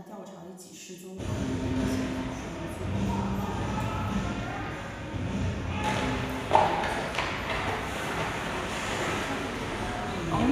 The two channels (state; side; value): identical; both; correlation 1.00